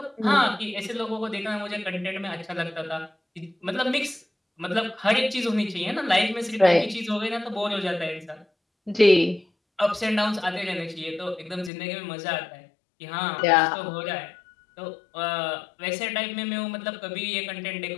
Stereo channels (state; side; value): drops out; right; at 11.7 s